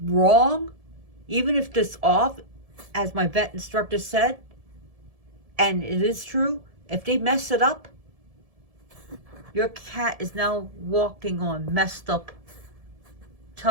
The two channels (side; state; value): left; late; 1.7 ms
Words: wrong, even if it's off, as my vet instructor said, and it is true, if they mess it up, your cat is now walking on messed up